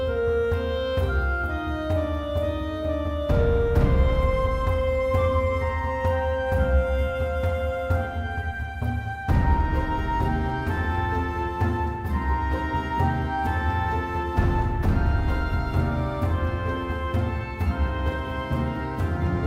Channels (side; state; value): both; identical; correlation 1.00